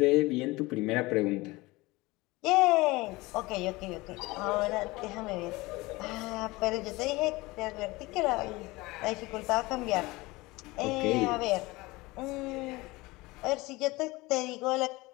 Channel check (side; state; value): right; quieter; 21.8 dB